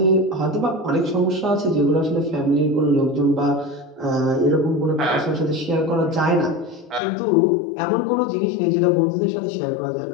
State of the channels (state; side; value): drops out; right; at 7.0 s